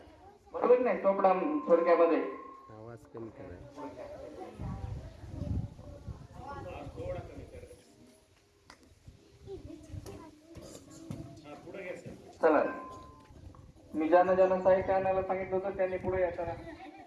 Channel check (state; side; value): identical; both; correlation 1.00